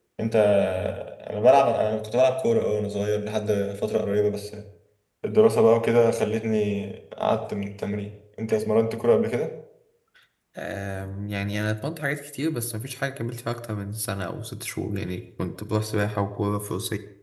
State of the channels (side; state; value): both; identical; correlation 1.00